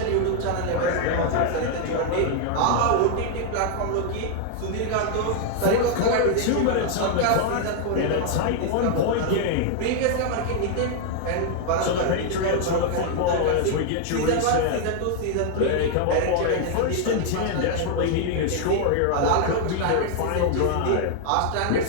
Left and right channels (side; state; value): both; different; correlation 0.00